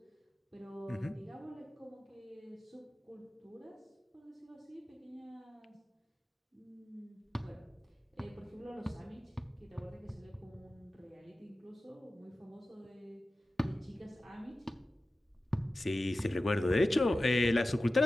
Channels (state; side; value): normal; both; correlation 0.95